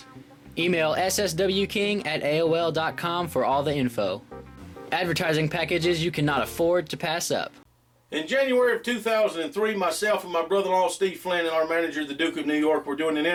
Email sswking@aol.com for all the info. Advertising packages you cannot afford to pass up. In January of 2003, myself and my brother-in-law Steve Flynn and our manager, the Duke of New York, were doing an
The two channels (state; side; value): identical; both; correlation 1.00